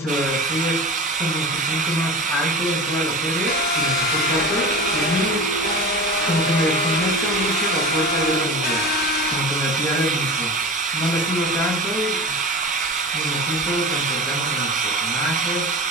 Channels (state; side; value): normal; both; correlation 0.32